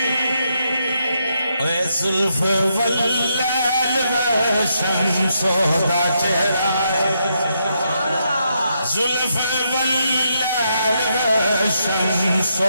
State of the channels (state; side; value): inverted; both; correlation -0.79